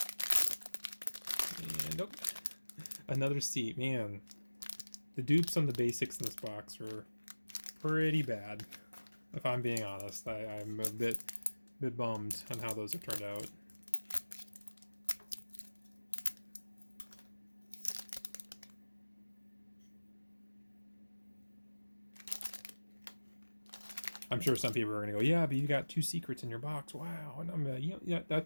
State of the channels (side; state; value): both; inverted; correlation -1.00